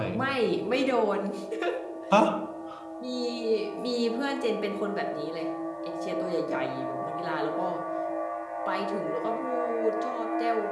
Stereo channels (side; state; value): both; identical; correlation 1.00